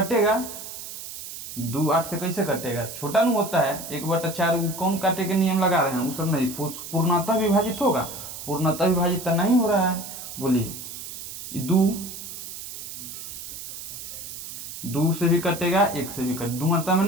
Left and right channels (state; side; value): noise; right; hiss, 10 dB below the sound